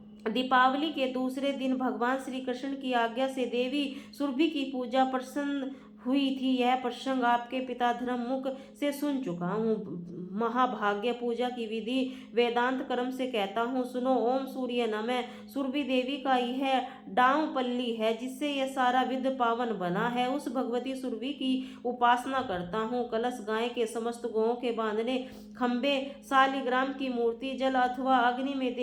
दीपावली के दूसरे दिन भगवान श्री कृष्ण की आज्ञा से देवी सुरभि की पूजा प्रसन्न हुई थी। यह प्रसंग आपके पिता धर्ममुख से सुन चुका हूँ। महाभाग्य पूजा की विधि वेदांत क्रम से कहता हूँ, सुनो। ओम सूर्य नमः। सुरभि देवी का यह डांव पल्ली है, जिससे यह सारा विध पावन बना है। उस भगवती सुरभि की उपासना करता हूँ। कलश, गाय के समस्त गौओं के बांधने, खंबे, शालिग्राम की मूर्ति, जल अथवा अग्नि में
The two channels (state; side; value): identical; both; correlation 1.00